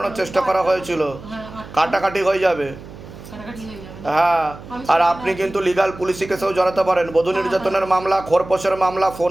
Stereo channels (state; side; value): noise; right; hum, 16 dB below the sound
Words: চেষ্টা করা হয়েছিল, কাটাকাটি হয়ে যাবে। কাটাকাটি হয়ে যাবে। হ্যাঁ, আর আপনি কিন্তু লিগাল পুলিশি কেসেও জড়াতে পারেন, বধূ নির্যাতনের মামলা, খোরপোশের মামলা,